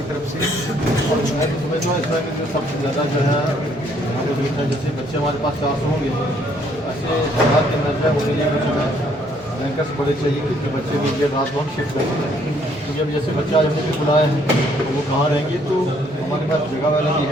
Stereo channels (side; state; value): both; normal; correlation 0.66